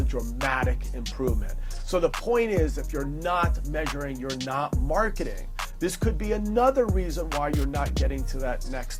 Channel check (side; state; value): both; identical; correlation 1.00